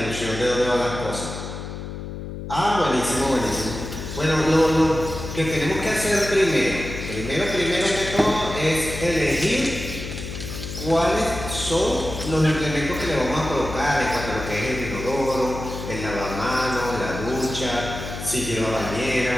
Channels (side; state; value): left; noise; hum, 8 dB below the sound